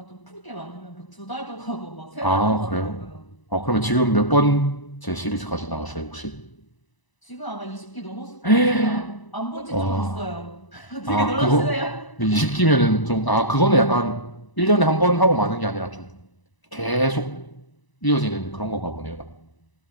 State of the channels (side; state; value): right; late; 1.0 ms